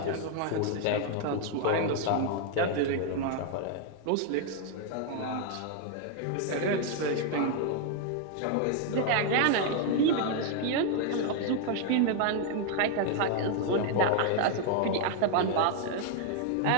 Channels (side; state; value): both; different; correlation 0.00